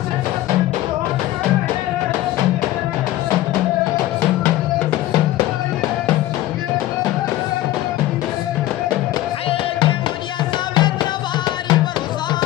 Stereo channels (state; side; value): quieter; right; 15.3 dB